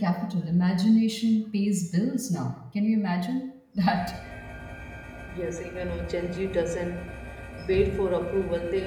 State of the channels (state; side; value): identical; both; correlation 1.00